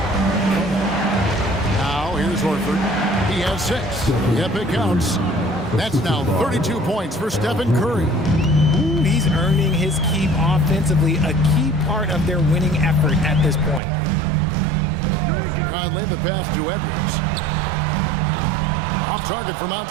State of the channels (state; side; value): drops out; left; at 13.8 s